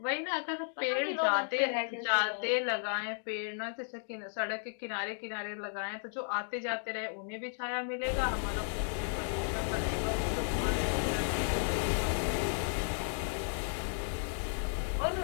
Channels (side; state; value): right; silent; digital silence